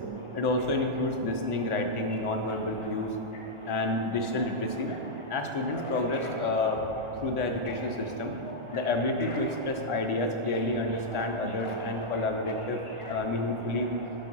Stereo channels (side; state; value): left; late; 1.4 ms